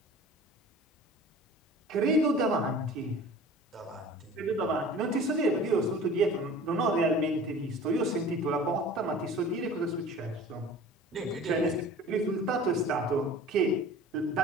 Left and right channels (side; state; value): both; normal; correlation 0.42